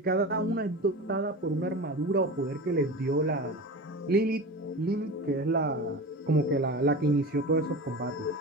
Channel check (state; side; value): normal; both; correlation 0.30